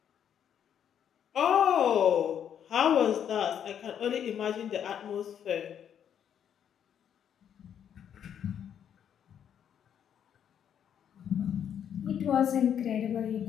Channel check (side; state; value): right; quieter; 9.0 dB